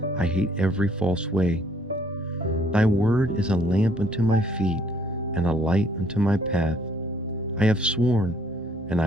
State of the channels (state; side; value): normal; both; correlation 0.63